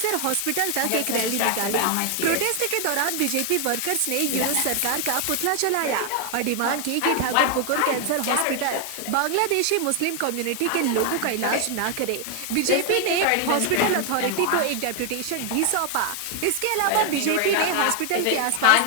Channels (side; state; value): both; different; correlation 0.00